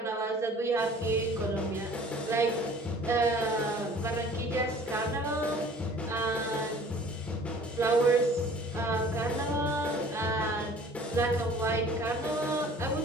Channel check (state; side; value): normal; both; correlation 0.49